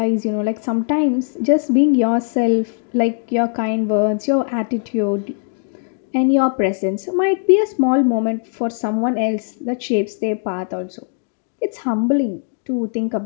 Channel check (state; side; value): silent; right; 57 dB below the other